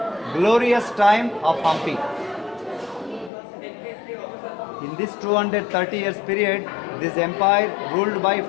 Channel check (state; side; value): drops out; right; at 3.3 s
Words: glorious time of Hampi. In this 230 years period, this empire ruled by